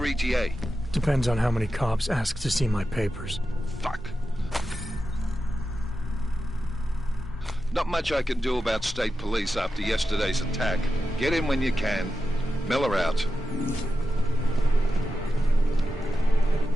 ETA? Depends on how many cops ask to see my papers. Fuck. Not much I can do about state police after yesterday's attack. Get in when you can. Miller out.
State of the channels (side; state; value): both; normal; correlation 0.91